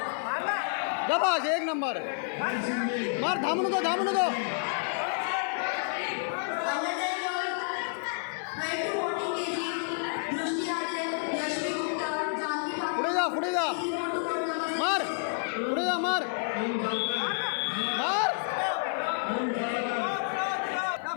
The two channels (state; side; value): silent; right; digital silence